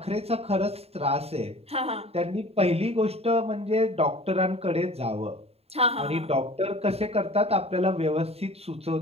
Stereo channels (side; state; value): left; late; 0.29 ms